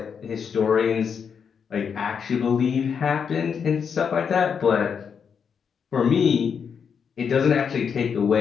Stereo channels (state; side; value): quieter; right; 6.8 dB